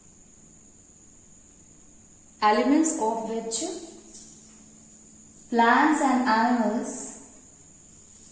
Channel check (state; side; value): identical; both; correlation 1.00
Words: of which plants and animals